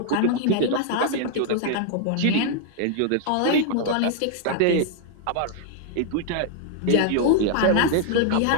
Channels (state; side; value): different; both; correlation 0.00